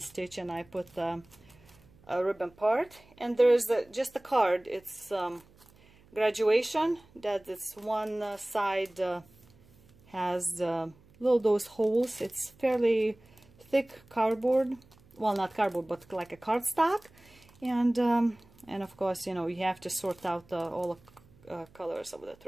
and I put a ribbon part. And there's just a card. It's graduation, that this one side has little those holes. It's fairly thick cardboard, well, not cardboard, but like a cardstock. And of course, you know, you have to sort out all the colors of the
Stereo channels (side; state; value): right; noise; hum, 28 dB below the sound